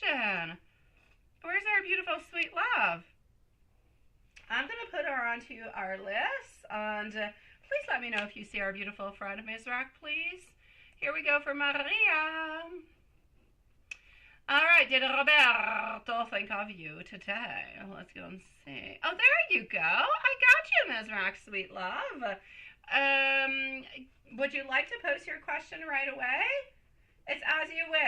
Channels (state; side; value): identical; both; correlation 1.00